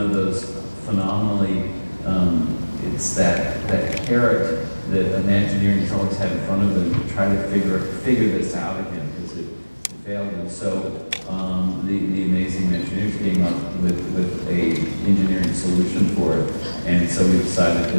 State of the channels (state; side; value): inverted; both; correlation -1.00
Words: those phenomenally, it's that carrot that Imagineering's always had in front of them to try to figure this out again, because it failed. And so the amazing Imagineers came up with a engineering solution for it, and so we decided to